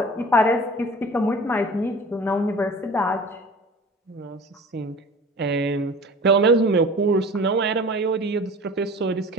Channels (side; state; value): both; normal; correlation 0.41